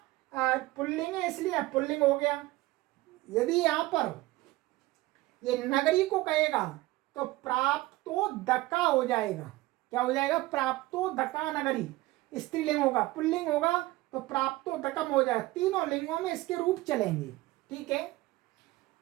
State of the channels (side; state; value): left; quieter; 19.1 dB